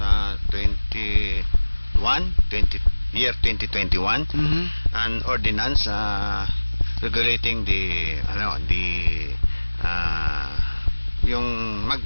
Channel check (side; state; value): both; inverted; correlation -1.00